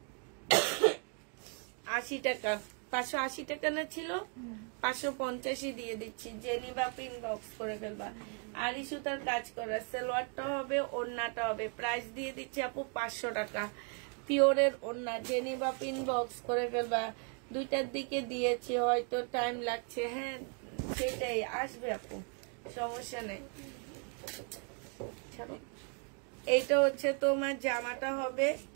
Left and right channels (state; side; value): quieter; left; 39.4 dB